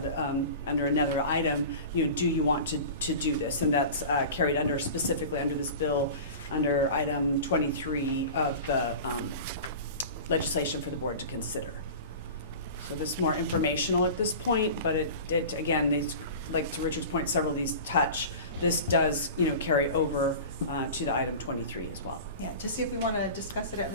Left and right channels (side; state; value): both; inverted; correlation -0.35